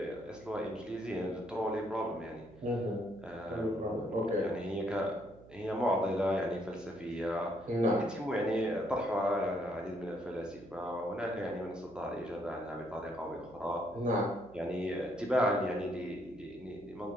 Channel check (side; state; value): right; noise; hum, 20 dB below the sound